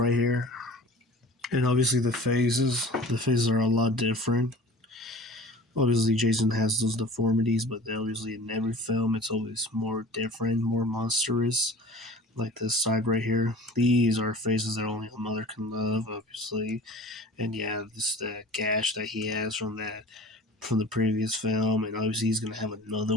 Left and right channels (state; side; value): normal; both; correlation 0.42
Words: here. And obviously the faces are a lot different. Obviously Jason has those deformities, but obviously in every film it's always more different, more monstrous. Like this side right here. These are faces that only a mother can love, obviously. And yeah, this the gash that he has from the previous film, and obviously he's gonna have